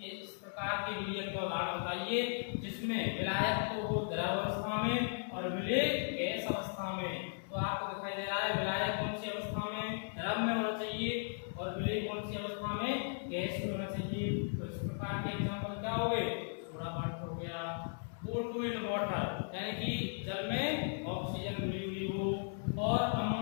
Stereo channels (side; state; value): right; silent; 53 dB below the other